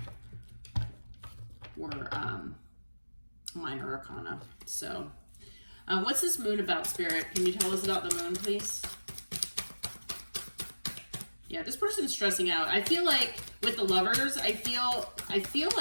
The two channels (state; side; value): inverted; both; correlation -1.00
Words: were minor arcana. So what's this moon about, Spirit? Can you tell us about the moon, please? Yeah, this person's stressing out. I feel like with the Lovers, I feel